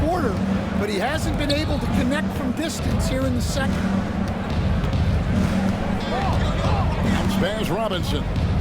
but he hasn't been able to connect from distance here in the second. Spurs Robinson.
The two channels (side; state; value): both; identical; correlation 1.00